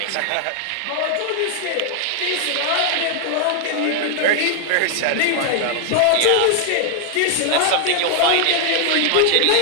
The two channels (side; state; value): both; different; correlation 0.00